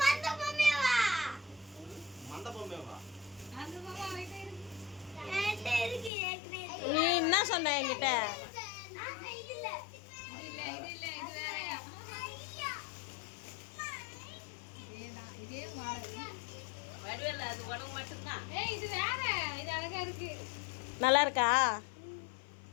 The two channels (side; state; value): right; drops out; at 6.1 s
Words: மந்த பொம்மைவா? மந்த பொம்மைவா? அந்த பொம்மை வெயிட்டா இருக்கு. என்கிட்ட இருக்கு ஏற்கனவே. நீ என்ன சொன்ன என்கிட்ட? இல்ல இது வேறயா? இதே மாடல். வடிவேல அது உனக்கு மட்டும் தான். ஏய் இது வேற. இது அழகா இருக்கு. நல்லா இருக்கா?